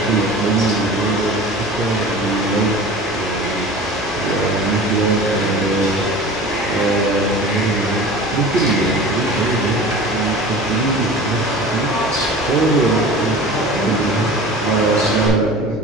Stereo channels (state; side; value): normal; both; correlation 0.38